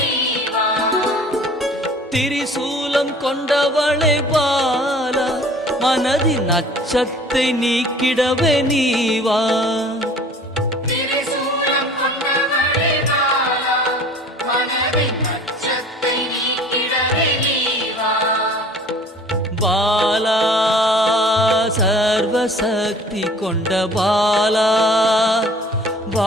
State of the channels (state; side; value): normal; both; correlation 0.48